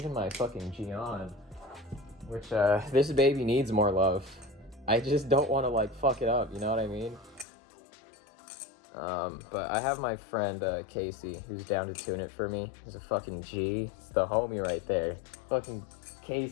my fucking Gion, which this baby needs more love. I just don't want to like fuck it up, you know what I mean? But I have my friend Casey who's down to tune it for me. He's a fucking G. It's the homie right there. Fucking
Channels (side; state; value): right; drops out; at 7.5 s